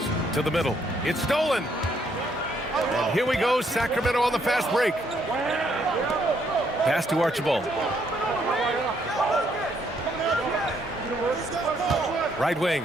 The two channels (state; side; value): normal; both; correlation 0.71